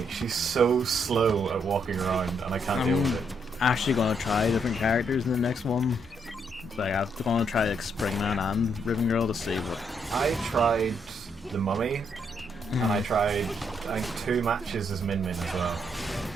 She's so slow at walking around, and I can't deal with it. Actually going to try different characters in the next one. Like I'm going to try like Springman and Ribbon Girl to see what. I tried the Mummy, and I tried I think 2 matches as Min Min as well.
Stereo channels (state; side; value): normal; both; correlation 0.74